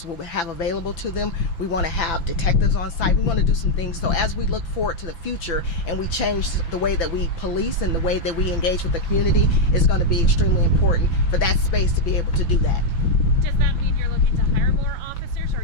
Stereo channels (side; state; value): right; late; 5.9 ms